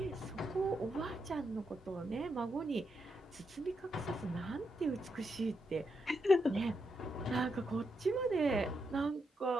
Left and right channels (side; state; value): both; normal; correlation 0.82